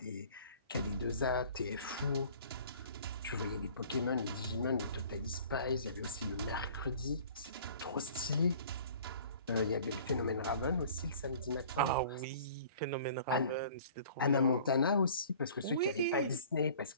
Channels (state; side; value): inverted; both; correlation -0.49